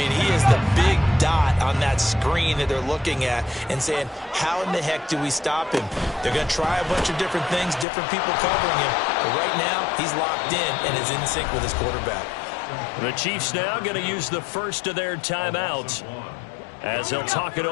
he is the big dot on that screen that they're looking at and saying, how in the heck do we stop him? They're going to try a bunch of different things, different people covering him. But right now, he's locked in and is in sync with his quarterback. The Chiefs now going to use the first of their timeouts as they'll talk it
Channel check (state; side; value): drops out; right; at 7.9 s